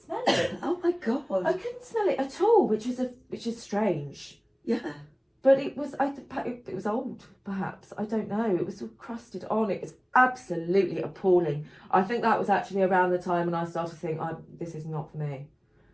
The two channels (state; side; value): identical; both; correlation 1.00